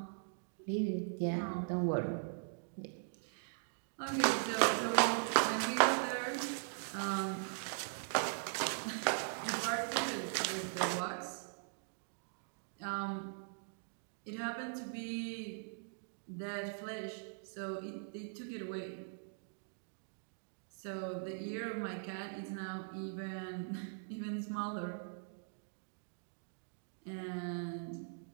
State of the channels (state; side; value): silent; left; digital silence